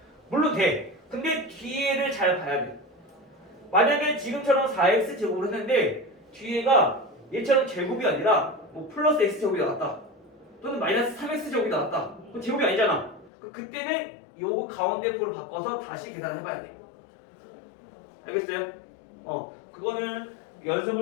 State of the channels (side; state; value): right; drops out; at 13.3 s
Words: 물론 돼. 근데 뒤에를 잘 봐야 돼. 만약에 지금처럼 4x제곱을 했는데 뒤에가 얘처럼 제곱이 아니라 뭐 플러스 x제곱이 나왔다. 또는 마이너스 3x제곱이 나왔다. 그럼 제곱이 아니잖아. 그때는 요거 가운데 부를 바꿔서 다시 계산을 해봐야 돼. 알겠어요? 그거는